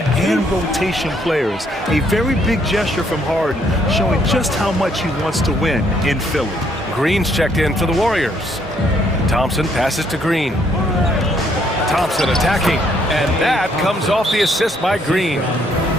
and rotation players. A very big gesture from Harden, showing just how much he wants to win in Philly. Green's checked in for the Warriors. Thompson passes to Green. Thompson attacking, and that comes off the assist by Green.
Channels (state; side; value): normal; both; correlation 0.69